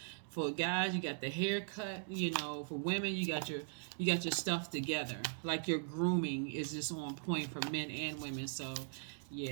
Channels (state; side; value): silent; left; digital silence